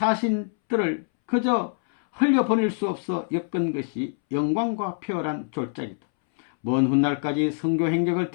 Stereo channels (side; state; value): right; silent; 62 dB below the other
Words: 그저 흘려보낼 수 없어 엮은 것이 영광과 표열한 졸작이다. 먼 훗날까지 선교 행적을